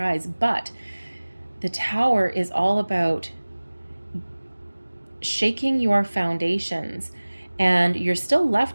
but the Tower is all about shaking your foundations. And you're still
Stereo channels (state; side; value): inverted; both; correlation -1.00